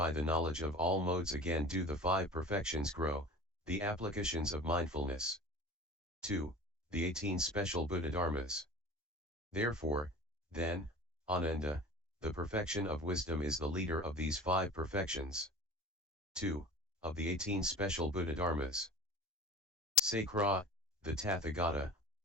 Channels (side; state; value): both; normal; correlation 0.38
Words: the knowledge of all modes again do the 5 perfections grow, the applications of mindfulness. 2. The 18 special Buddha Dharmas. Therefore, then, Ananda, the perfection of wisdom is the leader of these 5 perfections. 2. Of the 18 special Buddha Dharmas. Sakra, the Tathagata,